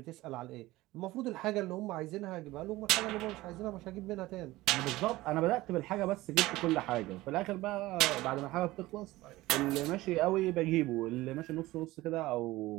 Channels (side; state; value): left; quieter; 18.3 dB